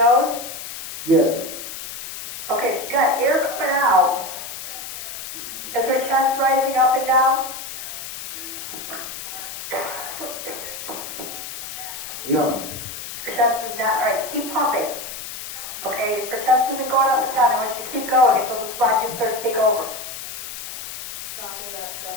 Yes. Okay, she's got air coming out. Is her chest rising up and down? No. Her chest is not. All right, keep pumping. Okay, if her chest isn't going up and down, I want you to keep going until the squad gets there to take over. Stopping at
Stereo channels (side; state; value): left; noise; hiss, 9 dB below the sound